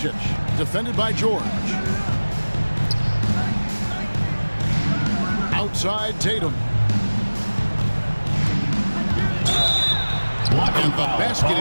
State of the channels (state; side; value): inverted; both; correlation -1.00